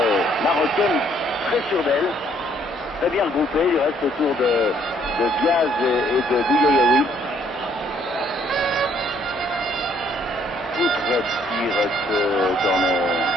marocaine très sûre d'elle. Très bien regroupée. Il reste autour de Diaz et de Bouyaoui. Foutre tire ce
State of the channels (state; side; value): normal; both; correlation 0.65